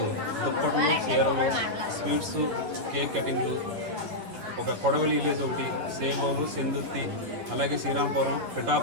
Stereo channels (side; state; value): left; late; 11 ms